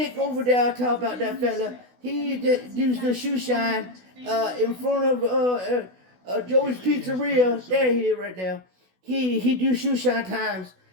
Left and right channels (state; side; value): late; left; 16 ms